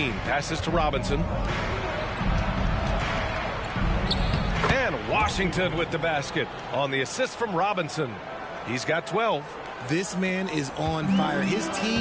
passes to Robinson. And Washington with the basket on the assist from Robinson. He's got 12. This man is on fire. His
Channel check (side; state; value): both; identical; correlation 1.00